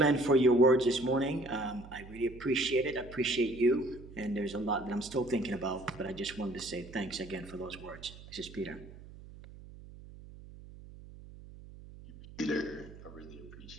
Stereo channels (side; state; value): right; noise; hum, 17 dB below the sound